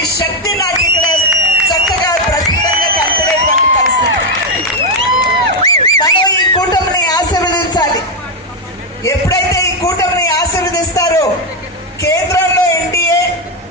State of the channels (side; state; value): both; normal; correlation 0.05